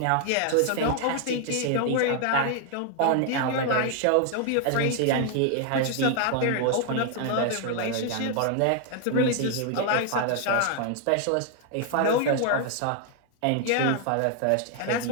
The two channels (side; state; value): both; different; correlation 0.00